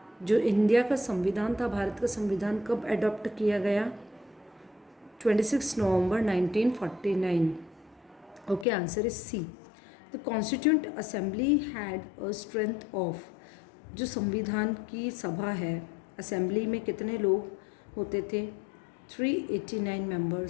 जो India का संविधान था, भारत का संविधान कब adopt किया गया? 26 नवंबर 1949. Okay, answer is C. The Constituent Assembly had a strength of, जो संविधान की सभा है, असेंबली में कितने लोग होते थे? 389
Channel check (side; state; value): right; drops out; at 8.7 s